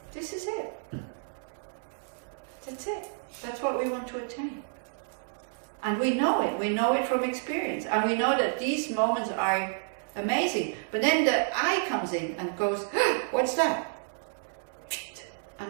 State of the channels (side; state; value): left; silent; digital silence